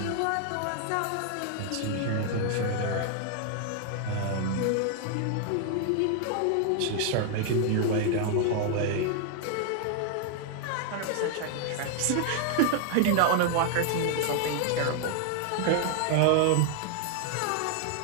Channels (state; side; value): different; both; correlation 0.00